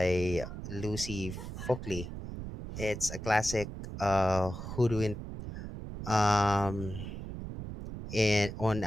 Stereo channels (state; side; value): noise; right; rumble, 8 dB below the sound